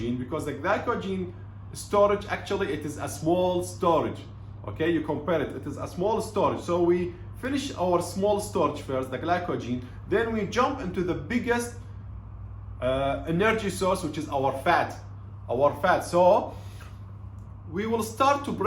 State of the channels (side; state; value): both; identical; correlation 1.00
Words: because the glycogen storage, actually it is a small storage. Okay, you compare it is a small storage. So we finish our small storage first, the glycogen, then we jump into the biggest energy source, which is our fat. So we will start to